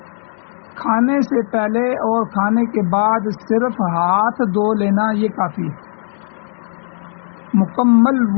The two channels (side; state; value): right; silent; digital silence